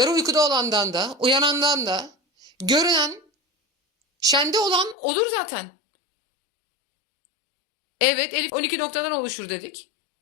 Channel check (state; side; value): drops out; right; at 5.0 s